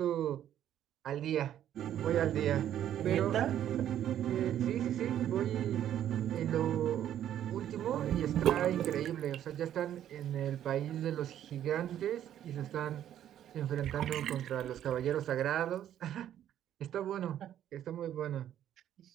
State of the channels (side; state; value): left; quieter; 10.9 dB